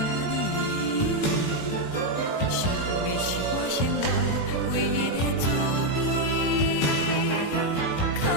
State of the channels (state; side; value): late; right; 18 ms